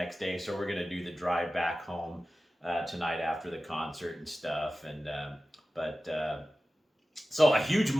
day. So we're going to do the drive back home tonight after the concert and stuff. So a huge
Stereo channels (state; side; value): normal; both; correlation 0.95